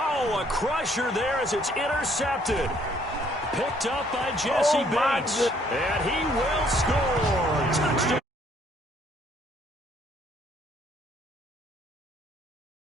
a crusher there as it's intercepted. Picked up by Jesse Bates. And he will score. Touchdown.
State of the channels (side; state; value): both; normal; correlation 0.64